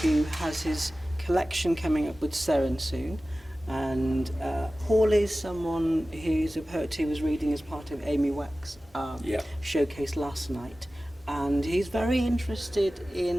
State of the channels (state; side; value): normal; both; correlation 0.96